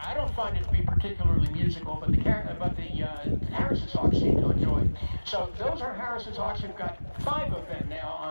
I don't find it to be particularly musical, but the Harris's hawks seem to enjoy it. So those are Harris's hawks. We've got 5 of them now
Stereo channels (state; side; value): inverted; both; correlation -1.00